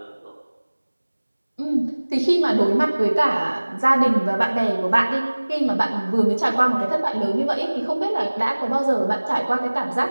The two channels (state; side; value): inverted; both; correlation -1.00